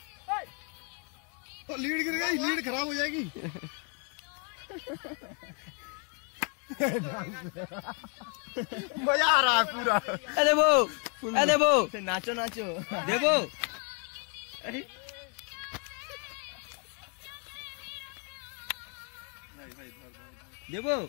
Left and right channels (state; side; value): quieter; right; 37.1 dB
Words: लीड गिर गई, लीड खराब हो जाएगी। मजा आ रहा है पूरा। দেবো দেবো নাচো নাচো দেবো দেবো